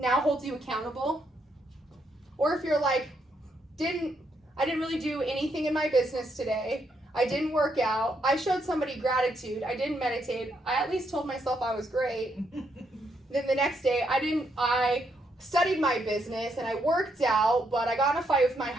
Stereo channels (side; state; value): both; normal; correlation 0.77